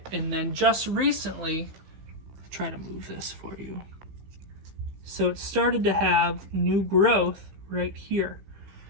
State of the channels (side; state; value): left; late; 15 ms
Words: And then just recently, I'll try to move this for you. So it started to have new growth right here.